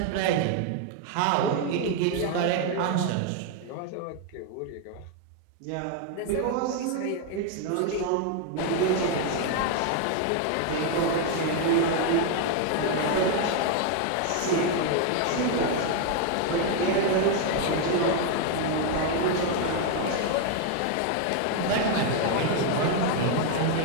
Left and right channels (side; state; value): both; different; correlation 0.01